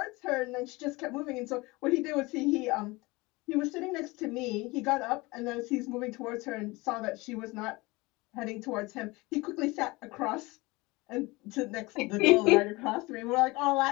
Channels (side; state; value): right; quieter; 23.2 dB